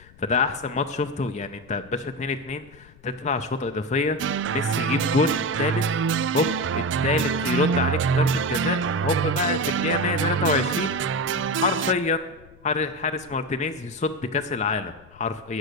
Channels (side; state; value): left; noise; rumble, 25 dB below the sound